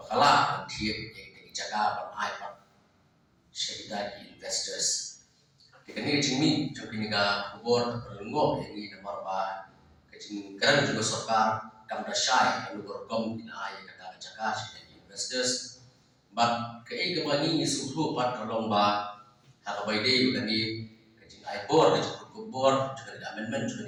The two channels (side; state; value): both; identical; correlation 1.00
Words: tiap yang jaga ban IPAT syarikat investors kini jimi jokini ka kubor perlenggo yang ini nomor ba kecing kerana juga sarkar kam dasyai anu berkom ina ay kata jaga syarikat investors but kei gabani suhu pat tolong ba hakabaide begani kecing IPOR kecing kubor juga ada amendment